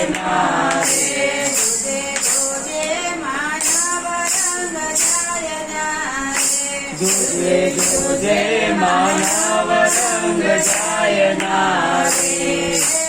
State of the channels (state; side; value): identical; both; correlation 1.00